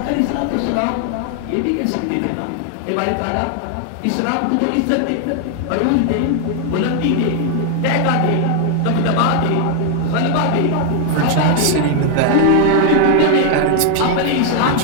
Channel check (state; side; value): different; both; correlation 0.00